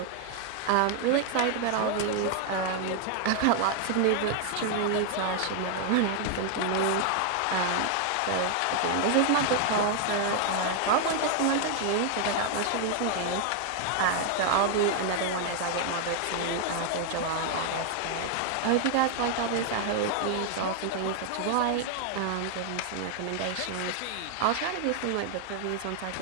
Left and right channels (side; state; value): both; different; correlation 0.00